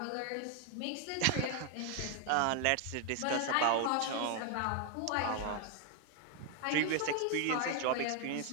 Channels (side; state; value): both; different; correlation 0.01